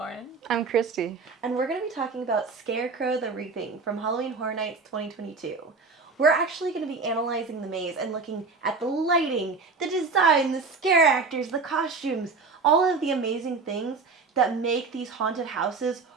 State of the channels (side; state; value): left; quieter; 4.4 dB